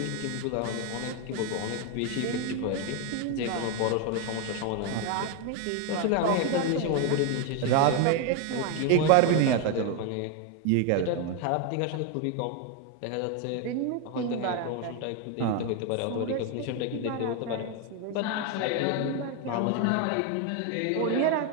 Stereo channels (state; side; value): different; both; correlation 0.01